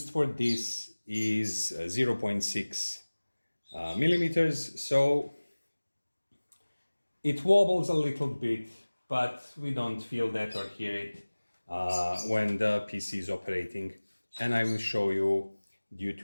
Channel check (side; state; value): both; inverted; correlation -1.00